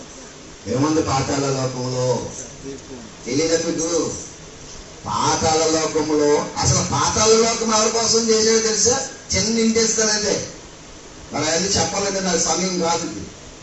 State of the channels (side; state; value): both; identical; correlation 1.00